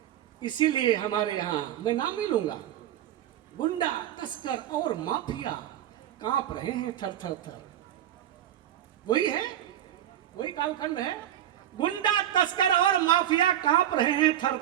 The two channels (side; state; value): left; quieter; 11.5 dB